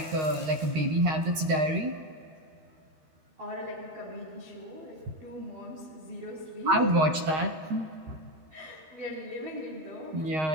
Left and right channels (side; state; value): left; late; 13 ms